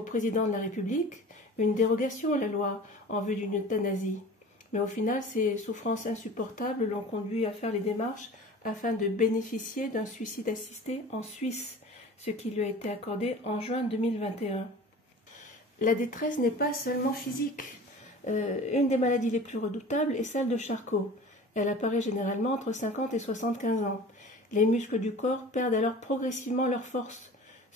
président de la République, une dérogation à la loi en vue d'une euthanasie. Mais au final, ces souffrances insupportables l'ont conduit à faire les démarches afin de bénéficier d'un suicide assisté en Suisse, ce qui lui a été accordé en juin 2021. La détresse n'est pas seulement physique. Une des maladies les plus redoutables est celle de Charcot. Elle apparaît généralement entre 50 et 75 ans. Les muscles du corps perdent alors progressivement leur force,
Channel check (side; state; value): both; normal; correlation 0.40